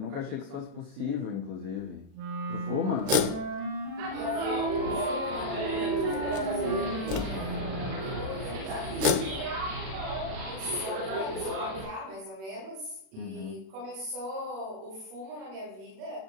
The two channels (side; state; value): left; late; 36 ms